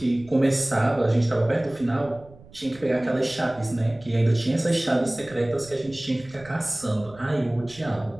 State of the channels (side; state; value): right; noise; rumble, 22 dB below the sound